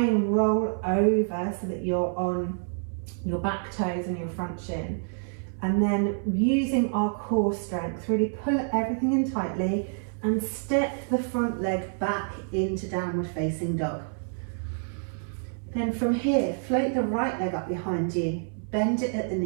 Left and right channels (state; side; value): silent; left; 60 dB below the other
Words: roll over so that you're on your back toes and your front shin. And then using our core strength, really pull everything in tightly and step the front leg back into downward facing dog. Then from here, float the right leg up behind you, bend it at the